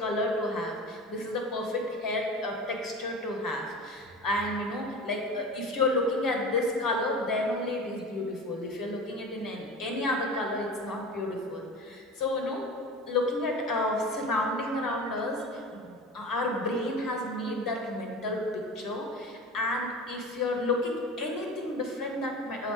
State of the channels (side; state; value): both; normal; correlation 0.33